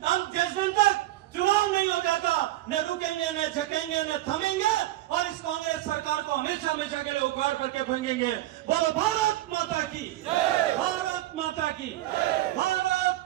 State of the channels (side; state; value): left; quieter; 15.7 dB